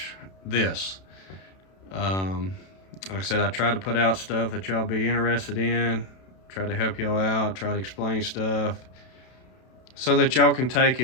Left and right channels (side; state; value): right; late; 32 ms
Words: this. Like I said, I try to put out stuff that y'all be interested in, try to help y'all out, try to explain stuff so that y'all can take